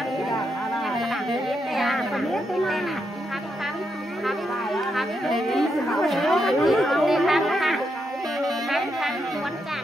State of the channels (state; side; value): normal; both; correlation 0.81